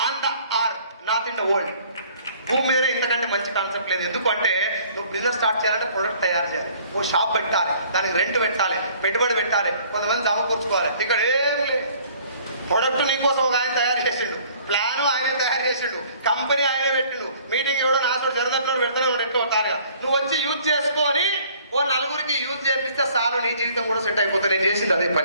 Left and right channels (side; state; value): both; inverted; correlation -0.55